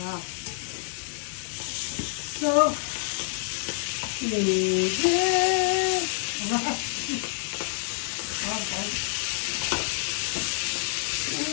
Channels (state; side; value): silent; right; 60 dB below the other